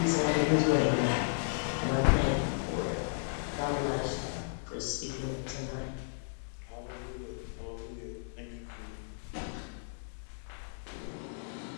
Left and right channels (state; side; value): silent; right; digital silence